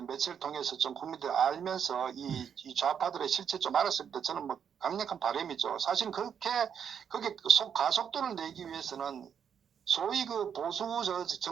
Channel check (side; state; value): left; quieter; 7.8 dB